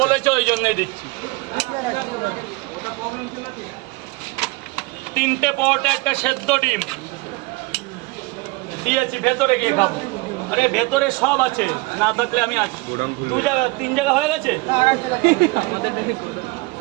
বলেছো ওই জন্যই দিচ্ছি। 3টে পরোটা, একটা সেদ্ধ ডিম দিয়েছি। ভেতরে গিয়ে খাবো। আরে ভেতরে সব আছে, না থাকলে আমি আছি। 2 জায়গা 3 জায়গা হয়ে গেছে।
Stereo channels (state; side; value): quieter; left; 23.9 dB